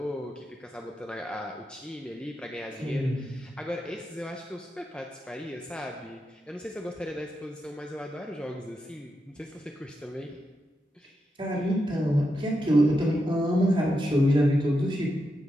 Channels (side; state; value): both; normal; correlation 0.85